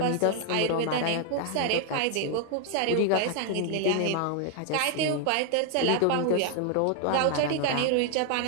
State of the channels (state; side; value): different; both; correlation 0.00